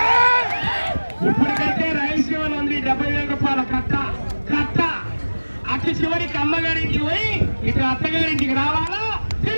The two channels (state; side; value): inverted; both; correlation -1.00